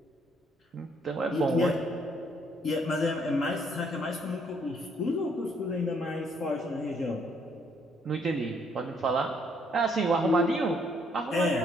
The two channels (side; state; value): both; normal; correlation 0.68